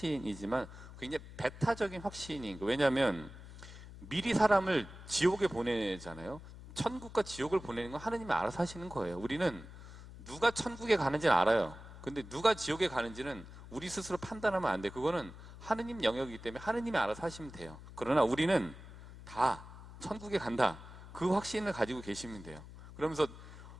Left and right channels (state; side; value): noise; left; hum, 15 dB below the sound